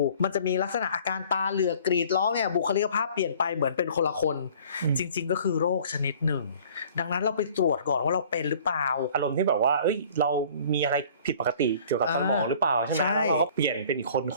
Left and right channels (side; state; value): both; inverted; correlation -0.51